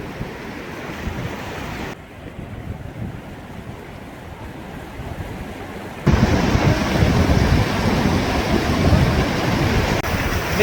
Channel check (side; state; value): both; identical; correlation 1.00